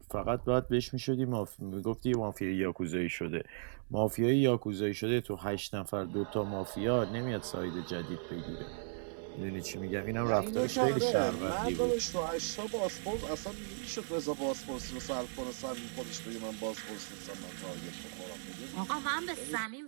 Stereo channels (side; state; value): left; silent; 54 dB below the other